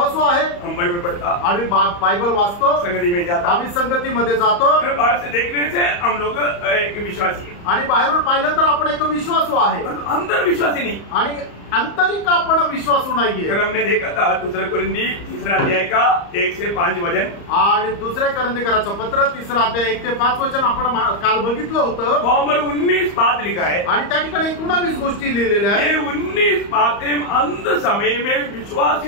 आहे, हम बाइबल पढ़ता, आम्ही बायबल वाचतो, संगति में जाता, आम्ही संगतीमध्ये जातो। बाहर से देखने से हम लोग एक विश्वासी है, आणि बाहेरून पाहिलं तर आपण एक विश्वासू आहे, अंदर विश्वासी नहीं। आणि आंतरिक आपण विश्वासू नाहीये। कल हमने देखा था 2 कोरिन्थी 3 अध्याय का 1 से 5 वचन, आणि दुसरे करंदीकराचं पत्र 3 अध्याय 1 ते 5 वचन आपण काल बघितलं होतं। नंबर 19 बात लिखा है आणि त्या ठिकाणी 19 गोष्टी लिहिलेल्या आहेत। ये 19 बातें अंत समय में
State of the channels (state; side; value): late; right; 34 ms